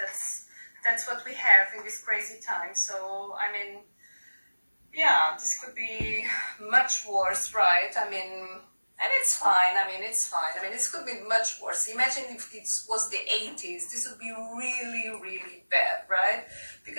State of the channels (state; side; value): inverted; both; correlation -1.00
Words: what we have in this crazy time. So I mean, yeah, this could be much worse, right? I mean, and it's fine. I mean, it's fine. I mean, this could be much worse. Imagine if it was the 80s. This would be really, really bad, right?